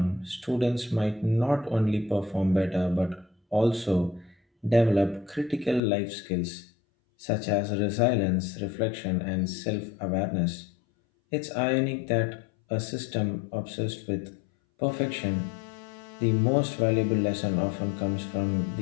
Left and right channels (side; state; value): right; drops out; at 5.8 s